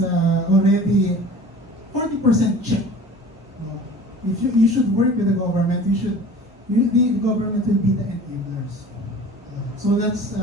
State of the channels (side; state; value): both; normal; correlation 0.42